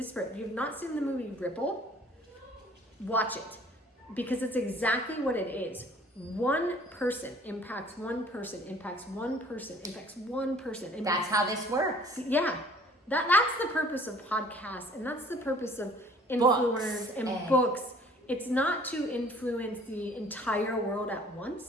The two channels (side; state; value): both; normal; correlation 0.53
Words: you have not seen the movie Ripple, watch it, because it's exactly what it is. One person impacts one person, impacts one person, impacts one person. That's how this works. Yeah. That's the purpose of podcasts, and that's the purpose of influencers and books. It's not to influence the entire world at